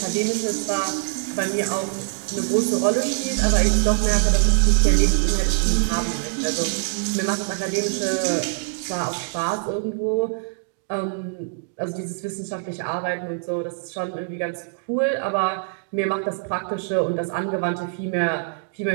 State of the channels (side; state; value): left; silent; digital silence